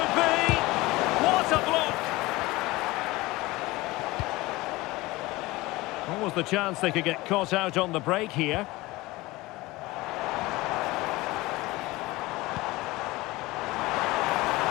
be. What a block. What was the chance they could get caught out on the break here?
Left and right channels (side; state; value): right; quieter; 20.5 dB